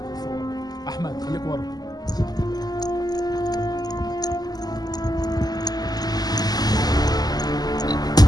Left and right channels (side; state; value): right; late; 0.19 ms